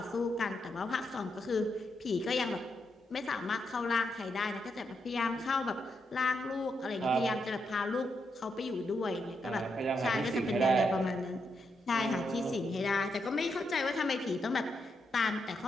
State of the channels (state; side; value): normal; both; correlation 0.81